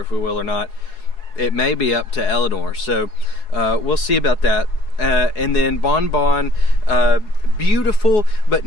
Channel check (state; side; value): late; right; 4.8 ms